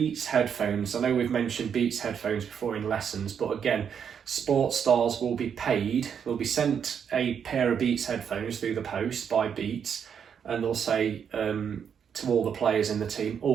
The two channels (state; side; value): quieter; left; 7.6 dB